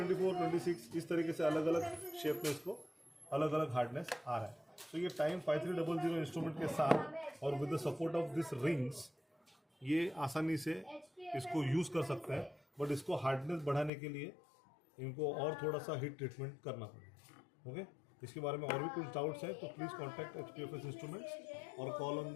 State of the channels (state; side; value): drops out; right; at 13.9 s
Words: 26 इस तरीके से अलग अलग शेप में इसको अलग अलग हार्डनेस आ रहा है। तो ये टाइम 5300 इंस्ट्रूमेंट के साथ और with the support of this rings ये आसानी से इसको यूज़ कर सकते हैं। बट इसको हार्डनेस बढ़ाने के लिए इनको और थोड़ा सा हीट ट्रीटमेंट करना पड़ेगा। ओके, इसके बारे में और भी कुछ डाउट्स हैं तो प्लीज़ कॉन्टैक्ट HPFS इंस्ट्रूमेंट्स और call on